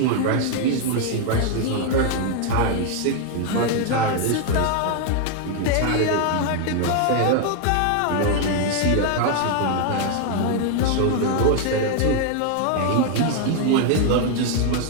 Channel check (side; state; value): both; different; correlation 0.00